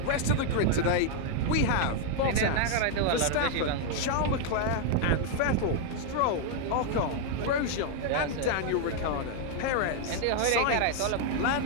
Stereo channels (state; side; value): different; both; correlation 0.00